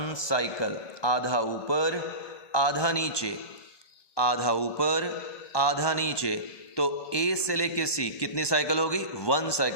साइकिल. आधा ऊपर आधा नीचे, आधा ऊपर आधा नीचे. तो ए से लेके सी कितनी साइकिल होगी? 1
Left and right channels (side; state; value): right; late; 1.2 ms